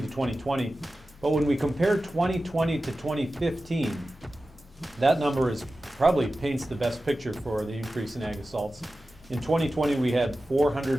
to 2020. But when we compare 2020 to 2015, that number probably paints the best picture for the increase in ag assaults. In 2020, we had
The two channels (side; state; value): both; normal; correlation 0.94